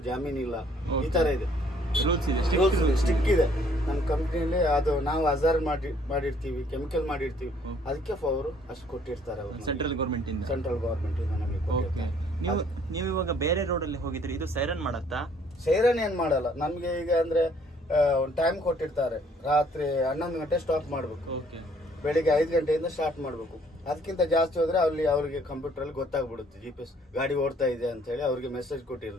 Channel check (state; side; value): normal; both; correlation 0.61